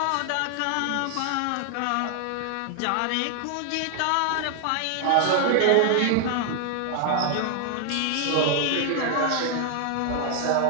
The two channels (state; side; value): different; both; correlation 0.00